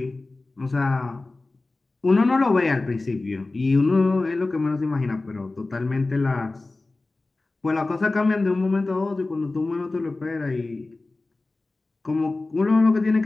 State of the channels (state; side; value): quieter; right; 3.2 dB